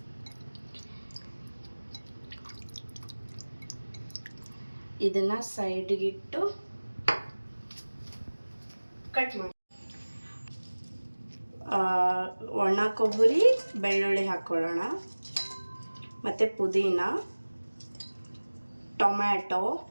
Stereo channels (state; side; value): inverted; both; correlation -1.00